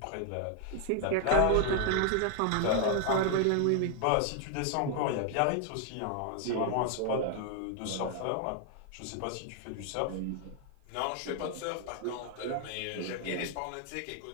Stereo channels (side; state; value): both; different; correlation 0.00